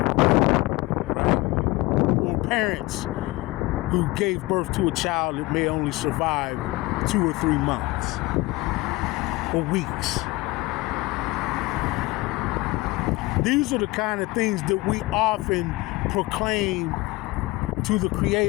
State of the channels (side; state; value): right; quieter; 21.2 dB